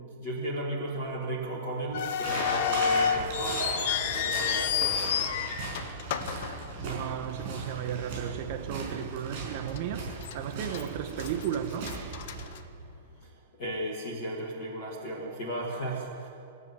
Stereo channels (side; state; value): both; inverted; correlation -0.33